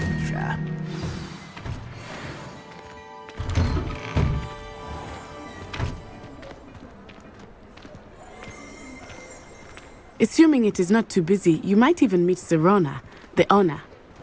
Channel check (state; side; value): identical; both; correlation 1.00